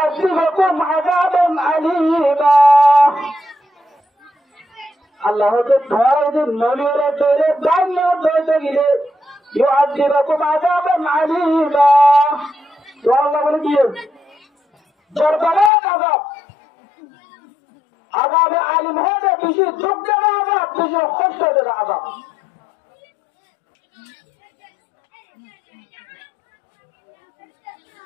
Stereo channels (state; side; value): drops out; right; at 15.7 s